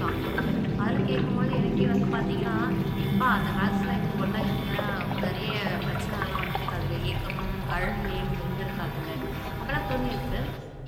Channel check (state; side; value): identical; both; correlation 1.00